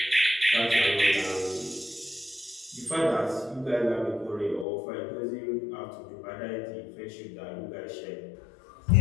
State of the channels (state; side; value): drops out; right; at 4.7 s